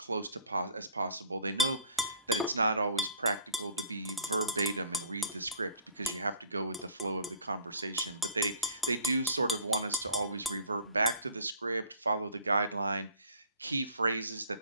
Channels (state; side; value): inverted; both; correlation -0.49